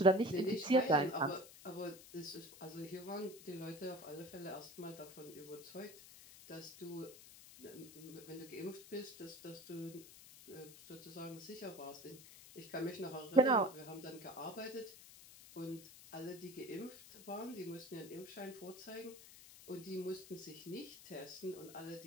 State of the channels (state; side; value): noise; left; hiss, 17 dB below the sound